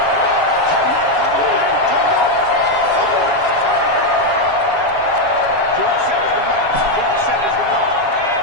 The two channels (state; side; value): late; left; 7.3 ms